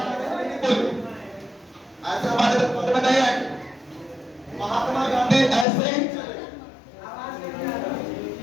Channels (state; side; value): drops out; right; at 5.7 s